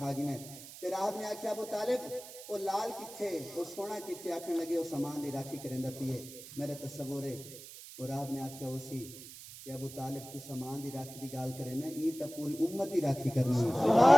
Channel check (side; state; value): right; noise; hiss, 14 dB below the sound